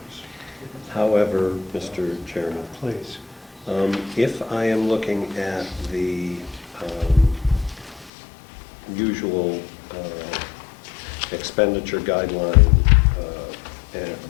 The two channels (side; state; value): right; drops out; at 8.1 s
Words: However, Mr. Chairman, Please. if I am looking at the usual expenditure guideline